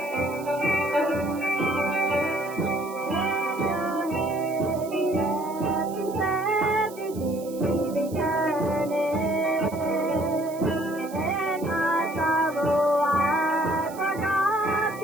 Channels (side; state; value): right; noise; hiss, 19 dB below the sound